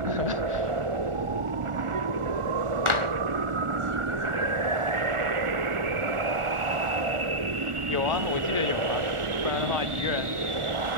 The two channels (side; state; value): left; late; 1.4 ms